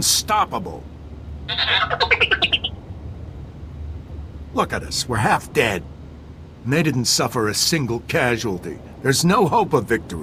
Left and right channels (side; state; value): both; identical; correlation 1.00